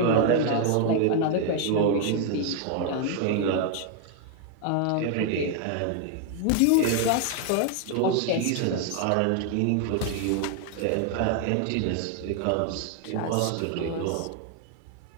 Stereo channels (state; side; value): different; both; correlation 0.00